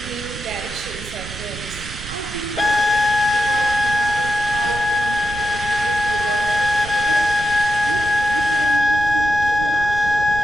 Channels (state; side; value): noise; right; rumble, 12 dB below the sound